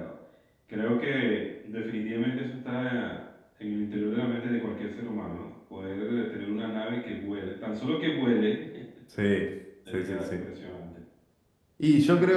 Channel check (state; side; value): identical; both; correlation 1.00